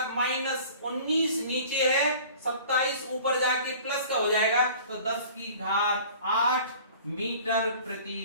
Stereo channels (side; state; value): both; inverted; correlation -0.46